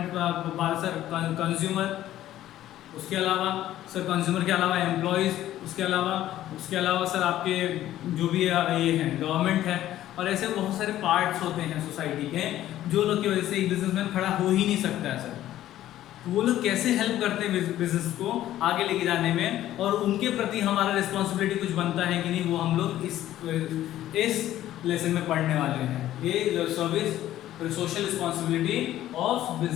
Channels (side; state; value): right; quieter; 13.3 dB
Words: बात सर, कंज्यूमर, उसके अलावा सर कंज्यूमर के अलावा एम्प्लॉयज़, उसके अलावा सर आपके जो भी ये हैं गवर्नमेंट है, और ऐसे बहुत सारे पार्ट्स होते हैं सोसाइटी के जो लोग की वजह से एक बिजनेसमैन खड़ा हो ही नहीं सकता है सर। तो वो लोग कैसे हेल्प करते हैं बिजनेस को आगे लेके जाने में, और उनके प्रति हमारा रिस्पॉन्सिबिलिटी कुछ बनता है कि नहीं, वो हम लोग इस लेसन में पढ़ने वाले हैं। ये service social responsibility of